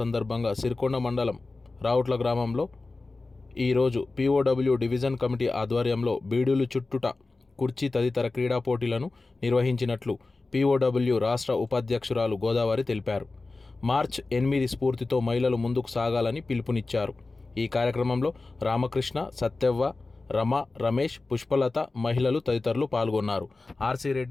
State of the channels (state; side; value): quieter; right; 3.5 dB